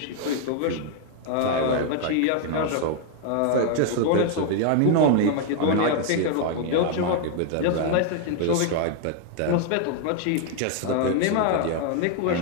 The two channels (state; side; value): different; both; correlation 0.00